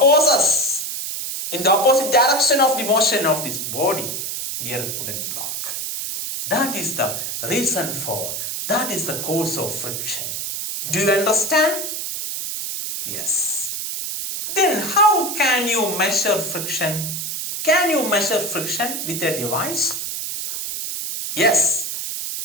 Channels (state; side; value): noise; right; hiss, 4 dB below the sound